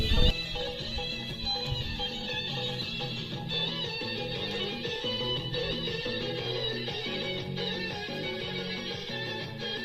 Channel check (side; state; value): both; identical; correlation 1.00